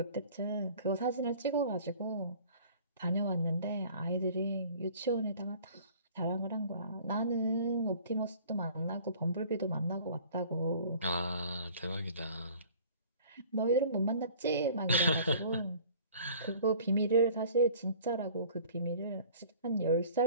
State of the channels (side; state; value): both; inverted; correlation -0.49